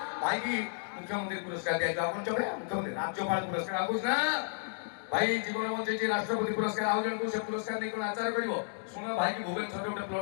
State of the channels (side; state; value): right; silent; digital silence